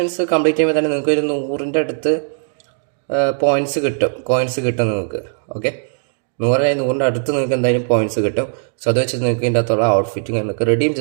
കംപ്ലീറ്റ് ചെയ്യുമ്പോൾ തന്നെ നിങ്ങൾക്ക് ഒരു 100ൻ്റെ അടുത്ത് കോയിൻസ് കിട്ടും നിങ്ങൾക്ക്. ഓക്കെ, 100ൻ്റെ അടുത്ത് നിങ്ങൾക്ക് എന്തായാലും പോയിൻറ്റ്സ് കിട്ടും. സോ അത് വെച്ച് നിങ്ങൾക്ക് ഇതിൻ്റെ അകത്തുള്ള ഔട്ട്ഫിറ്റിംഗ് നിങ്ങൾക്ക് റെഡീം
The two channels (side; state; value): left; silent; digital silence